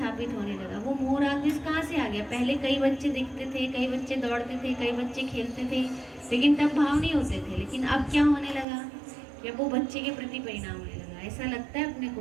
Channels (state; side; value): drops out; left; at 8.7 s